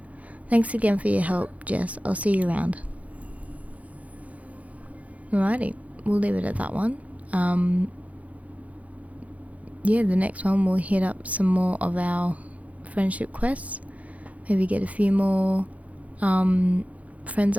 Thanks again for your help, Jess. I'll see you around. Alrighty, we'll leave it at that one. Yeah, the next one we'll hit up some more of our friendship quests. Maybe get a few more friends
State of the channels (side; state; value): left; late; 0.069 ms